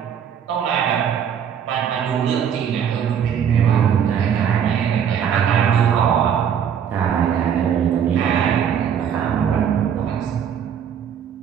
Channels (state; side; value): quieter; left; 8.3 dB